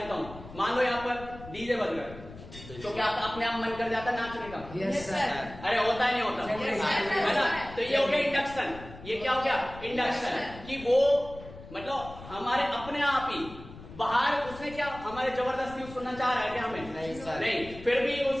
हूँ। मान लो यहाँ पर डीजे बज रहा है, तो क्या अपने आप मन कर जाता है नाचने का? Yes sir. अरे होता है नहीं होता? है ना? तो ये हो गया इंडक्शन। ये क्या हो गया? इंडक्शन। कि वो मतलब हमारे अपने आप ही बाहर, उसने क्या हमारे जबरदस्ती सुनना चाह रहा है क्या हमें? नहीं, फिर भी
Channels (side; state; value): left; noise; rumble, 16 dB below the sound